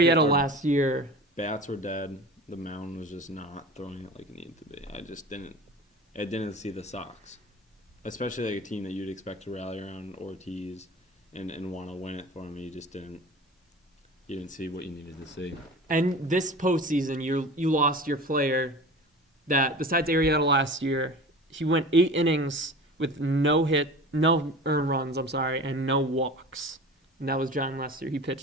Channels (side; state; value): both; normal; correlation 0.36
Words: our- last year, Bats were dead. The mound was just not throwing it like it needed to be. I didn't see the Sox, especially like a team that you'd expect to rally around Ortiz and want to win it for him. You just didn't. You didn't see what you needed to see. and this postseason, you lost your player that, besides Arrieta last year, he went 8 innings with no earned runs, and no walks. And that was John Lester. He